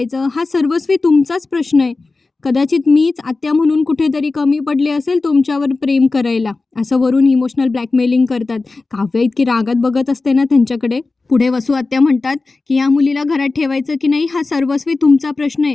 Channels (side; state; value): right; quieter; 3.6 dB